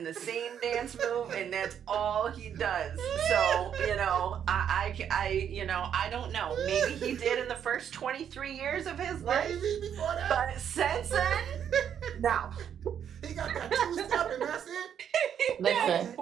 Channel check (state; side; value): quieter; left; 8.8 dB